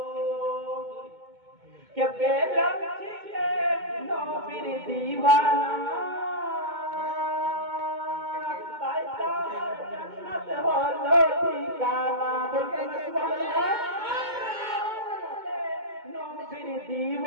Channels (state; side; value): late; left; 2.2 ms